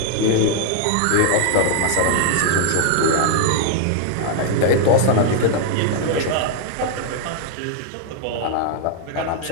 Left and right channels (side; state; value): both; different; correlation 0.00